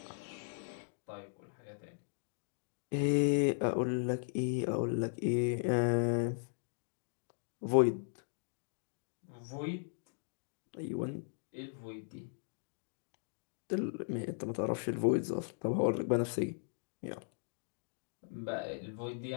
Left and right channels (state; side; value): silent; right; digital silence